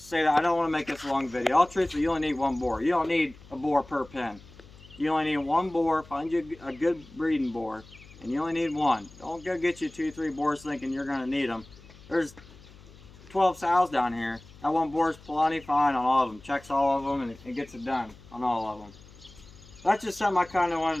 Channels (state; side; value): noise; left; hum, 22 dB below the sound